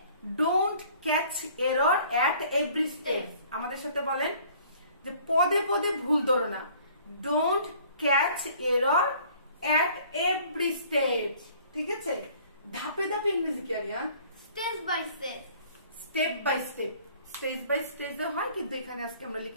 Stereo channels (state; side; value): inverted; both; correlation -0.54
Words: Don't catch error at every step. আমাদের সাথে বলেন যে পদে পদে ভুল ধরো না। Don't catch error at every step. ঠিক আছে। ধাপে ধাপে ইংরেজি কি Aryan? Step by step. Step by step. Stage by stage হয়, কিন্তু এখানে আজকে আমরা